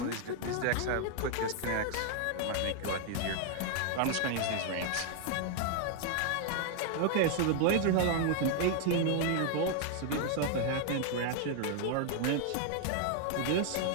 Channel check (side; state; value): both; different; correlation 0.00